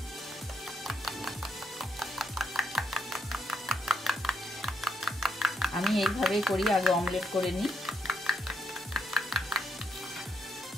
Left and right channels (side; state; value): both; normal; correlation 0.77